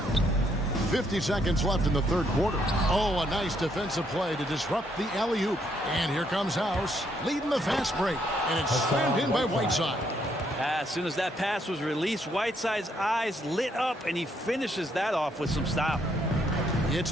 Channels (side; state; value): both; normal; correlation 0.72